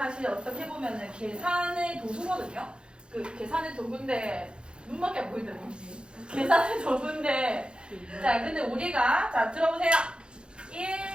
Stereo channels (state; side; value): late; left; 0.053 ms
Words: 어떻게 보면은 계산의 도구거든요. 그 계산의 도구인데 눈밖에 안 보이더라고요. 계산의 도구인데 자, 근데 우리가 자 들어보세요.